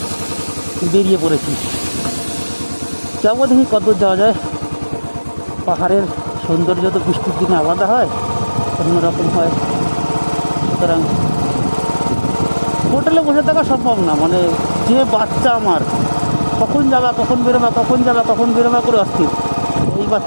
বেরিয়ে পড়েছি। যাবো, দেখি কতদূর যাওয়া যায়। পাহাড়ের সৌন্দর্য তো বৃষ্টির দিনে আলাদা হয়, অন্যরকম হয়। সুতরাং হোটেলে বসে থাকা সম্ভব না, মানে যে বাচ্চা আমার, কখন যাবা কখন বেরোবা করে অস্থির। এই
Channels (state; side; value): inverted; both; correlation -1.00